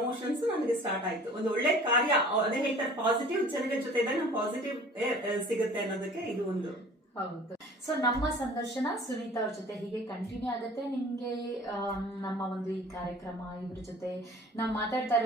ನನಗೆ ಸ್ಟಾರ್ಟ್ ಆಯ್ತು. ಒಂದು ಒಳ್ಳೆ ಕಾರ್ಯ, ಅದೇ ಹೇಳ್ತಾರೆ ಪಾಸಿಟಿವ್ ಜನಗಳ ಜೊತೆ ಇದ್ದಾಗ ನಮ್ಗೆ ಪಾಸಿಟಿವ್ ಸಿಗುತ್ತೆ ಅನ್ನೋದಕ್ಕೆ ಇದು ಒಂದು. ಹೌದು. ಸೊ ನಮ್ಮ ಸಂದರ್ಶನ ಸುನೀತಾ ಅವ್ರ ಜೊತೆ ಹೀಗೆ ಕಂಟಿನ್ಯೂ ಆಗುತ್ತೆ. ನಿಮ್ಗೆ ನಮ್ಮ ಒಂದು ಈ ಕಾರ್ಯಕ್ರಮ ಇವ್ರ ಜೊತೆ ನಾವು ಮಾತಾಡ್ತಾ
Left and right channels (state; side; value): normal; both; correlation 0.47